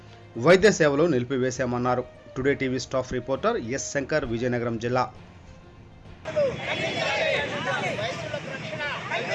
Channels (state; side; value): identical; both; correlation 1.00